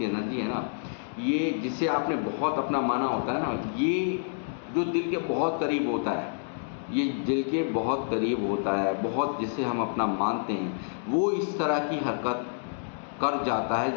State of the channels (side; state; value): right; silent; digital silence